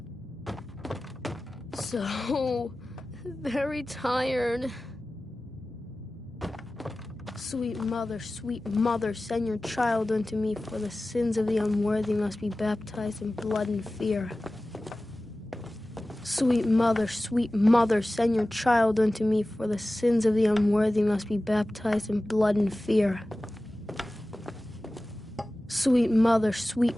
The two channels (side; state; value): both; normal; correlation 0.96